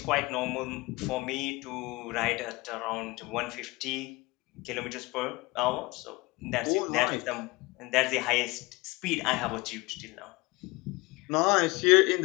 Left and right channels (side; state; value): right; quieter; 23.2 dB